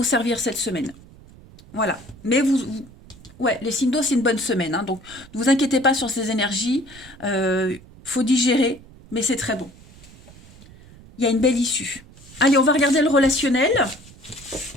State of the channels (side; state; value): right; noise; rumble, 22 dB below the sound